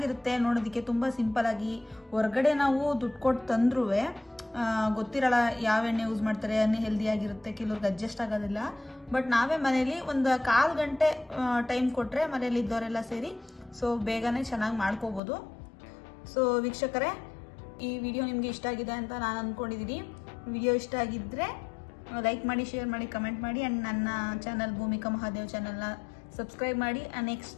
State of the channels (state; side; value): drops out; right; at 15.2 s